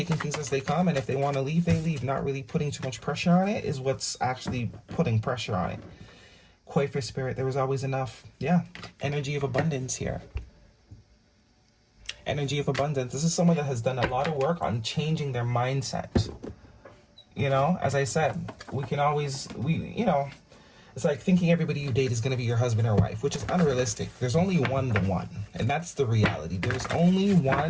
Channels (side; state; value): both; identical; correlation 1.00